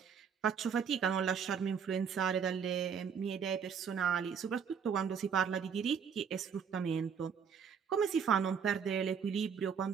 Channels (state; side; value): quieter; left; 6.9 dB